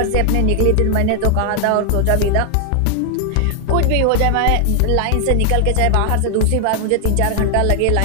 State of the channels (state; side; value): different; both; correlation 0.00